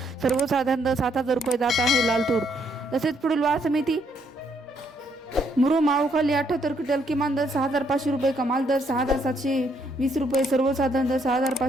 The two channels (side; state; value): both; normal; correlation 0.72